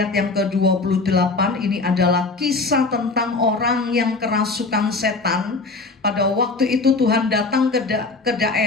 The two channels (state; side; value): quieter; right; 3.7 dB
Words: yang ke-28, ini adalah kisah tentang orang yang kerasukan setan. Pada waktu itu Tuhan datang ke